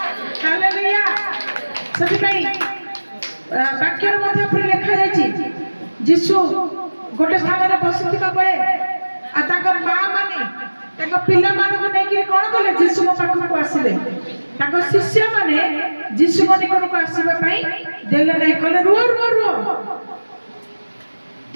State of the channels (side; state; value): both; inverted; correlation -1.00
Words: hallelujah. ସେଥିପାଇଁ ବାକ୍ୟରେ ମଧ୍ୟ ଉପରେ ଲେଖାଯାଇଛି ଯୀଶୁ ଗୋଟେ ସ୍ଥାନରେ ବସିଥିବା ବେଳେ ଆଉ ତାଙ୍କ ମା ମାନେ ତାଙ୍କ ପିଲାମାନଙ୍କୁ ନେଇକି କଣ କଲେ ଯୀଶୁଙ୍କ ପାଖକୁ ଆସିଲେ ତାଙ୍କ ଶିଷ୍ୟମାନେ ଯୀଶୁଙ୍କ ନିକଟକୁ ଆସିବା ପାଇଁ ଦେଲେ ନାହିଁ କହିଲେ ରୁହ ରୁହ ରୁହ